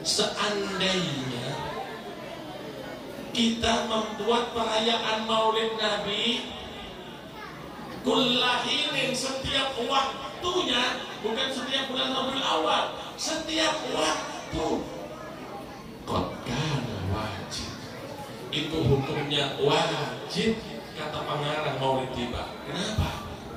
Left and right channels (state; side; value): identical; both; correlation 1.00